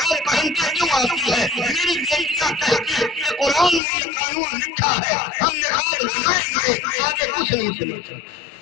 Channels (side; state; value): right; drops out; at 3.8 s